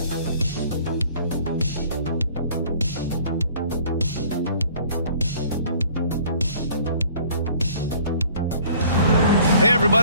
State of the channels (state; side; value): inverted; both; correlation -0.53